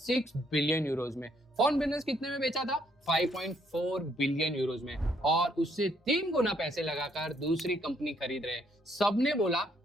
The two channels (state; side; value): normal; both; correlation 0.70